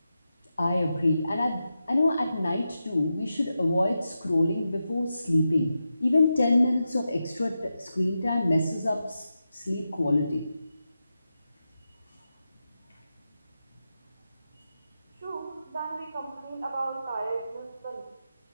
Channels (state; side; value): inverted; both; correlation -0.89